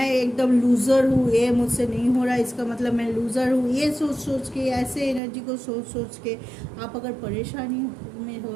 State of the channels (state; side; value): drops out; left; at 5.2 s